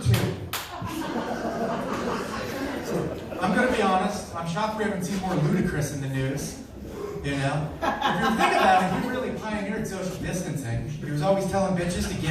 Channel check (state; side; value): identical; both; correlation 1.00